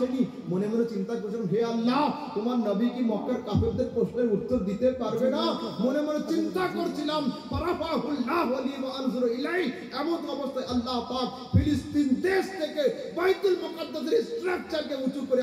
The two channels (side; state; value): both; identical; correlation 1.00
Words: মনে মনে চিন্তা করছিলাম, হে আল্লাহ, তোমার নবী কি মক্কার কাফেরদের প্রশ্নের উত্তর দিতে পারবে না? মনে মনে চিন্তা করছিলাম। ফারাফাহুল্লাহু লি ওয়া আনজুরু ইলাইহি। এমন অবস্থায় আল্লাহ পাক ফিলিস্তিন দেশ থেকে বাইতুল মুকাদ্দাসের স্ট্রাকচারকে উঁচু করে